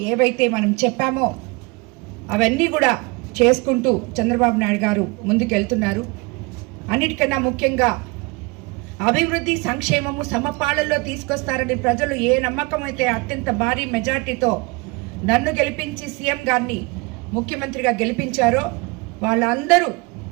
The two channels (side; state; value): left; quieter; 26.5 dB